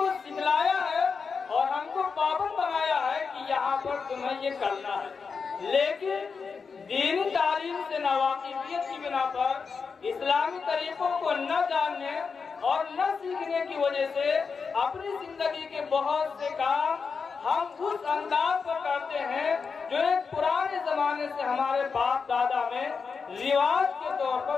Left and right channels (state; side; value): quieter; right; 5.4 dB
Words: سکھلایا ہے اور ہم کو پابند بنایا ہے کہ یہاں پر تمہیں یہ کرنا ہے۔ لیکن دینی تعلیم سے ناواقفیت کی بنا پر اسلامی طریقوں کو نہ جاننے اور نہ سیکھنے کی وجہ سے اپنی زندگی کے بہت سے کام ہم اس انداز پر کرتے ہیں جو ایک پرانے زمانے سے ہمارے باپ دادا میں رواج کے طور